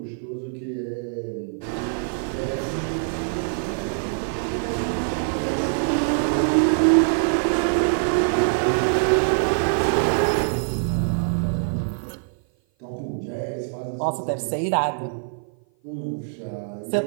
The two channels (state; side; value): silent; left; 56 dB below the other